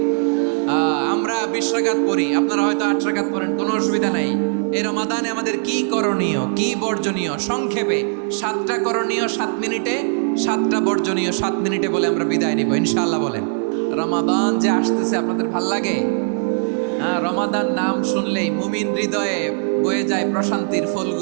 আমরা 20 রাকাত পড়ি, আপনারা হয়তো 8 রাকাত পড়েন, কোনো অসুবিধা নাই। এই রমাদানে আমাদের কি করণীয়, কি বর্জনীয়? সংক্ষেপে 7টা করণীয় 7 মিনিটে, 7টা বর্জনীয় 7 মিনিটে বলে আমরা বিদায় নিব ইনশাআল্লাহ। বলেন, রমাদান যে আসতেছে আপনাদের ভাল লাগে? রমাদান নাম শুনলেই মুমিন হৃদয়ে বয়ে যায় প্রশান্তির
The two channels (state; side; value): silent; left; 61 dB below the other